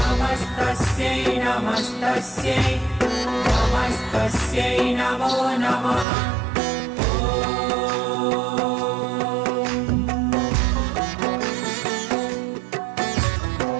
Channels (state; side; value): drops out; left; at 6.1 s